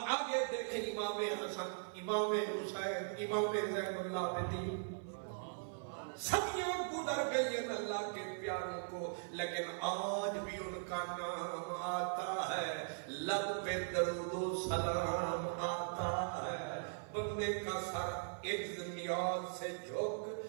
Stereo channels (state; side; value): silent; left; 51 dB below the other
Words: آگے دیکھیں امام حسن، امام حسین، امام زین العابدین، صدیاں گزر گئی ہیں اللہ کے پیاروں کو، لیکن آج بھی ان کا نام آتا ہے، لب پہ درود و سلام آتا ہے، بندے کا سر عجز نیاز سے جھک